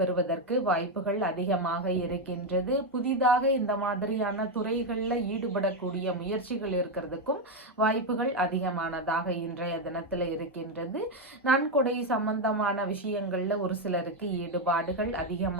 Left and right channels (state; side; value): normal; both; correlation 0.06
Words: பெறுவதற்கு வாய்ப்புகள் அதிகமாக இருக்கின்றது. புதிதாக இந்த மாதிரியான துறைகள்ல ஈடுபடக்கூடிய முயற்சிகள் இருக்கிறதுக்கும் வாய்ப்புகள் அதிகமானதாக இன்றைய தினத்துல இருக்கின்றது. நன்கொடை சம்பந்தமான விஷயங்கள்ல ஒரு சிலருக்கு ஈடுபாடுகள்